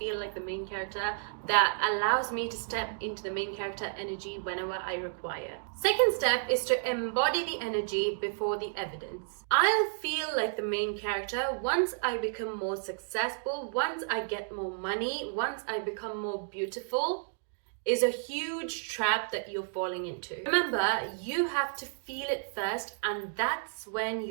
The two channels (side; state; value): left; silent; digital silence